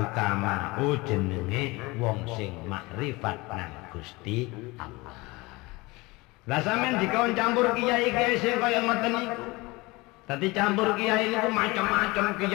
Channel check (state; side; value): quieter; right; 23.2 dB